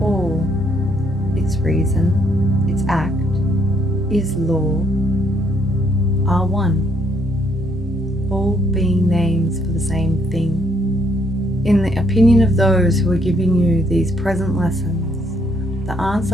all, its reason, its act, is law, are one, all being names for the same thing. In the opinion of those who are giving you these present lessons, the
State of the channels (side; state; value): both; normal; correlation 0.70